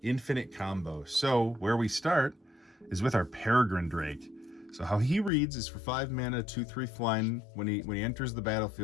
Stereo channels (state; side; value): drops out; right; at 5.3 s